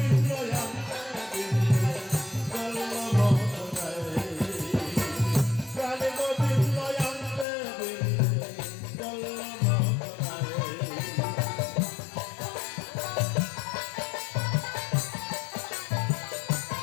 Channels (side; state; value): right; drops out; at 7.5 s